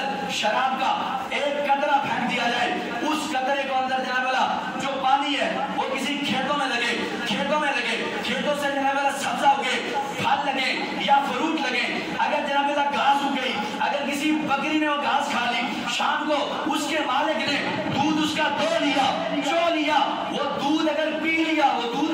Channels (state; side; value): identical; both; correlation 1.00